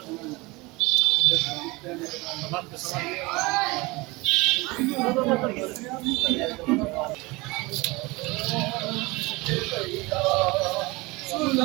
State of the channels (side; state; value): left; quieter; 23.7 dB